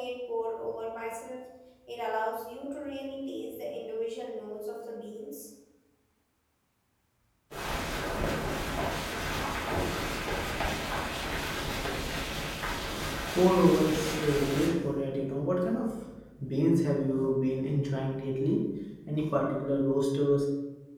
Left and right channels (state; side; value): identical; both; correlation 1.00